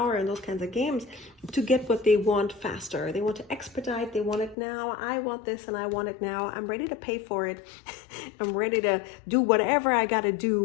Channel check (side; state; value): right; drops out; at 4.5 s